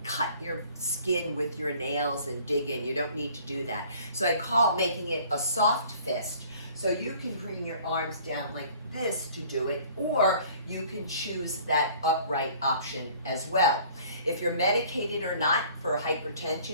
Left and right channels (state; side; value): inverted; both; correlation -0.52